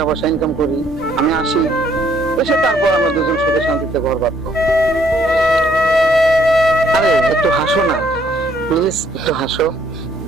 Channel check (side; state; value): both; normal; correlation 0.66